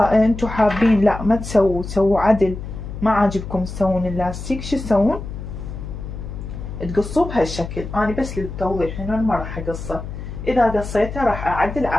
انتم حابين لا ما تسووا عدل، ما عاجبكم تسوون اللاستيك، شو تسوون؟ تقصوه بهالشكل. انا بس للتوضيح هنا ما راح اقصه. اذا قصيته راح اعدل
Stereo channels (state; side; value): noise; left; hum, 9 dB below the sound